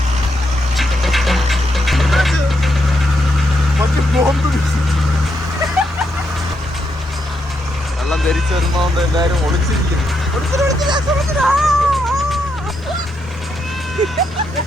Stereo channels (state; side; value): normal; both; correlation 0.80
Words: വെള്ളം ധരിച്ചു വരുന്നോണ്ട് എല്ലാരും ഒളിച്ചിരിക്കുന്നു.